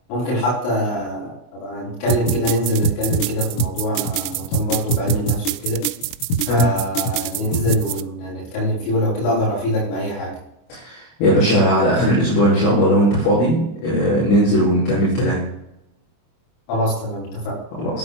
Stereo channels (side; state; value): right; late; 24 ms